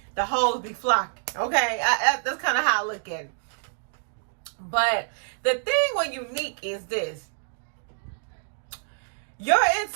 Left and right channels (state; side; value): silent; left; digital silence